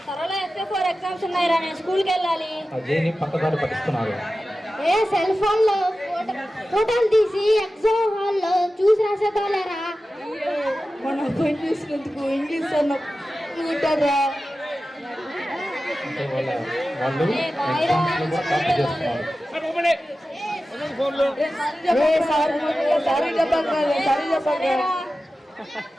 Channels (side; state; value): both; normal; correlation 0.94